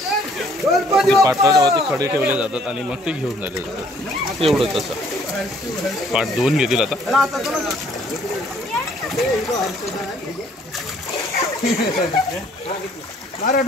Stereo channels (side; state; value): both; normal; correlation 0.61